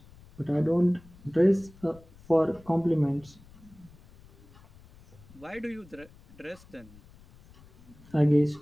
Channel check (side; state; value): left; noise; rumble, 24 dB below the sound